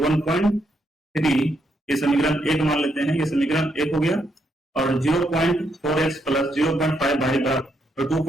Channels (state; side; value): normal; both; correlation 0.77